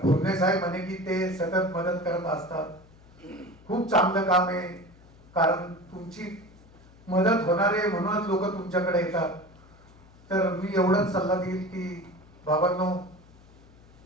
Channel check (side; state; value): left; noise; hum, 25 dB below the sound